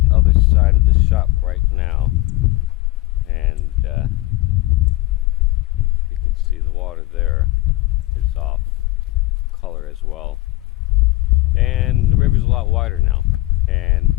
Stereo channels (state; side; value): quieter; right; 19.0 dB